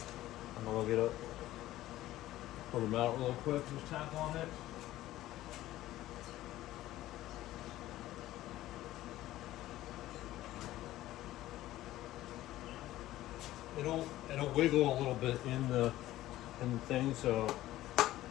I'm gonna get it, pull them out real quick, just tap on it. It'll wiggle a little bit in the thing, so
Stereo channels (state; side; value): quieter; right; 15.2 dB